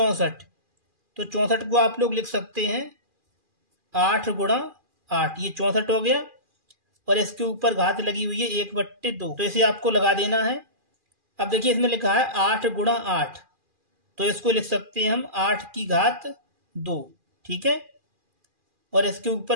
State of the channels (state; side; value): late; left; 2.4 ms